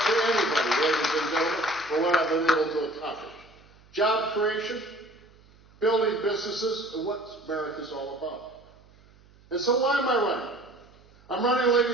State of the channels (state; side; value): noise; right; hum, 28 dB below the sound